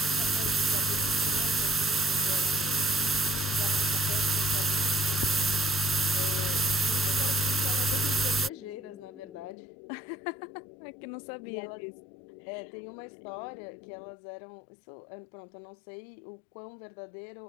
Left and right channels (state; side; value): drops out; right; at 9.6 s